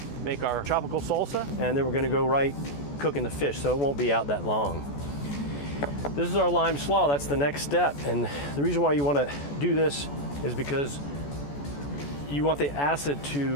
make our tropical salsa, and then we're gonna go right cooking the fish, so it won't be out that long. This is our lime slaw, that's the next step. And the reason why you wanna do this is because you want the acid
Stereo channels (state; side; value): late; right; 14 ms